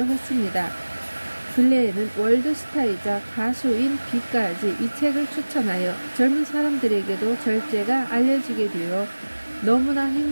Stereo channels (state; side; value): inverted; both; correlation -1.00